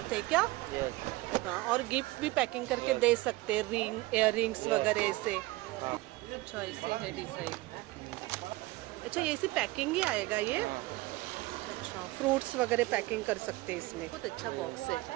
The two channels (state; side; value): quieter; left; 20.1 dB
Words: है क्या? यस। हाँ, और गिफ्ट भी पैकिंग करके दे सकते हैं, रिंग, इयर रिंग्स वगैरह ऐसे। हाँ। अच्छा, ऐसे है डिजाइन। अच्छा, ये ऐसी पैकिंग ही आएगा ये? अच्छा, फ्रूट्स वगैरह पैकिंग कर सकते हैं इसमें। बहुत अच्छा बॉक्स है।